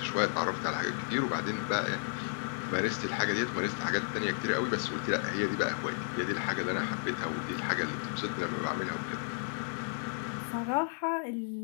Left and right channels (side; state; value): right; silent; 56 dB below the other